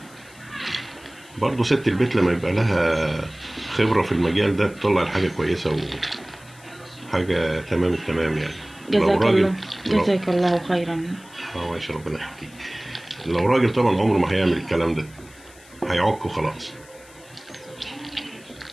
برضه ست البيت لما يبقى لها خبرة في المجال ده بتطلع الحاجة كويسة وحاجة تمام التمام يعني. جزاك الله خيرا. ماشي، ربنا يحكيك. لو راجل طبعا عمره ما هيعمل الكلام ده، هيعك وخلاص.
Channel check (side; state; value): left; noise; hiss, 24 dB below the sound